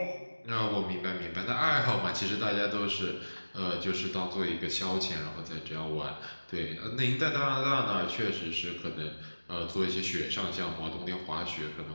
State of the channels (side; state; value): both; inverted; correlation -1.00